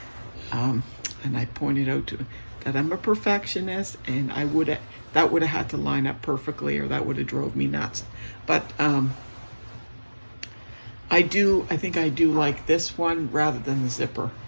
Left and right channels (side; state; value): both; inverted; correlation -1.00